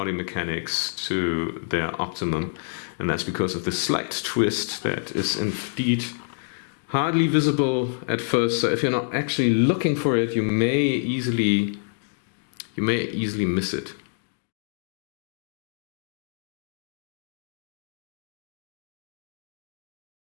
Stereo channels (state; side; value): silent; right; digital silence